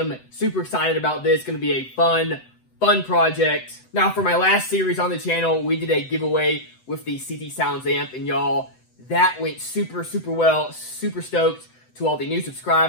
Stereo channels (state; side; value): late; right; 7.9 ms